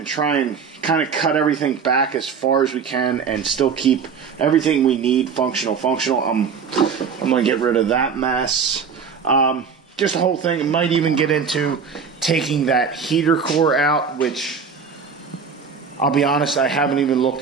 try and kind of cut everything back as far as we can and still keep everything we need functional. I'm going to get rid of that mess. Just the whole thing. It might even get into taking that heater core out, which I'll be honest, I haven't even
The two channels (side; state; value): left; quieter; 6.1 dB